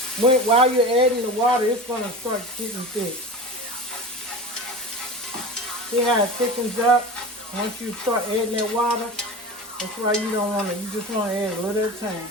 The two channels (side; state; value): both; normal; correlation 0.31